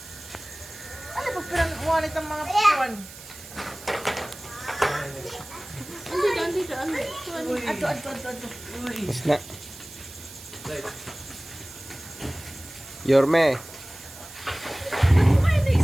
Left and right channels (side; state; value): right; noise; hiss, 16 dB below the sound